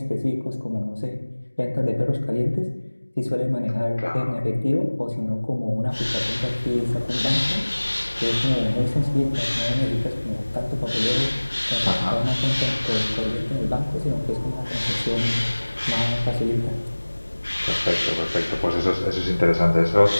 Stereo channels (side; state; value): both; inverted; correlation -1.00